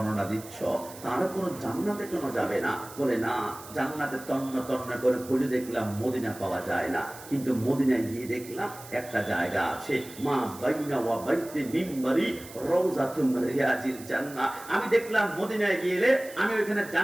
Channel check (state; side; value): noise; right; hiss, 17 dB below the sound